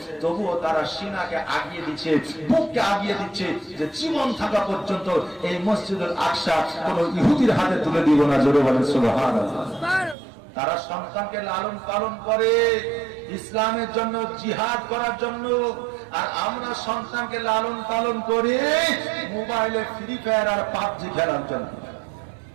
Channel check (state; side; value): drops out; left; at 10.2 s